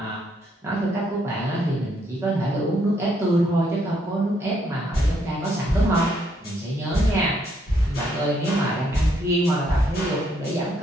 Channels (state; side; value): normal; both; correlation 0.72